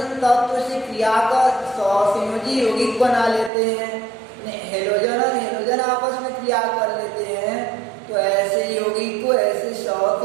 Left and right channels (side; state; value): left; drops out; at 3.5 s